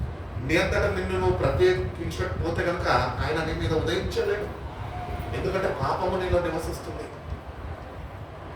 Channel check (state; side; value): identical; both; correlation 1.00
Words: నీ అంతటా నిన్ను నువ్వు ప్రత్యేకించకపోతే కనుక ఆయన నీ మీద ఉదయించలేడు. ఎందుకంటే పాపము నీలో నివసిస్తుంది.